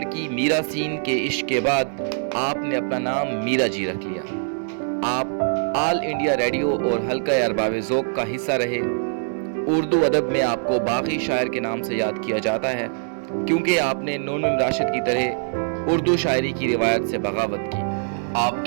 मीरा सीन के इश्क के बाद आपने अपना नाम मीरा जी रख लिया। आप ऑल इंडिया रेडियो और हल्का अरबाब ज़ौक़ का हिस्सा रहे। उर्दू अदब में आपको बागी शायर के नाम से याद किया जाता है, क्योंकि आपने नून राशिद की तरह उर्दू शायरी की रिवायत से बगावत की।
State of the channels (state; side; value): silent; left; digital silence